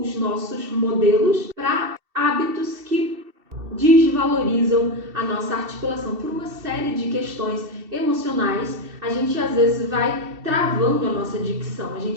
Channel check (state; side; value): late; left; 2.7 ms